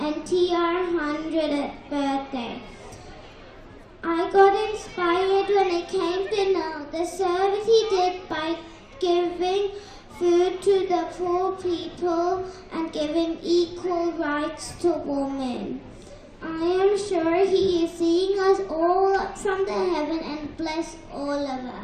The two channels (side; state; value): both; identical; correlation 1.00